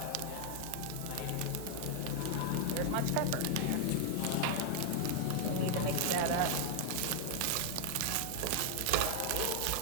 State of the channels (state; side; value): different; both; correlation 0.00